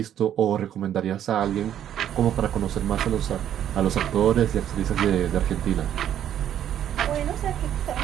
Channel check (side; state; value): left; quieter; 10.4 dB